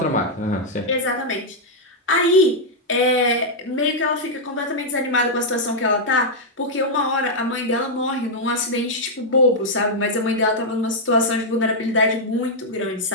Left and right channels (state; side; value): normal; both; correlation -0.04